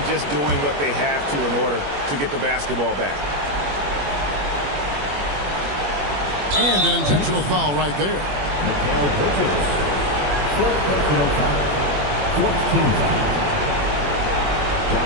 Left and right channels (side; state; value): left; late; 21 ms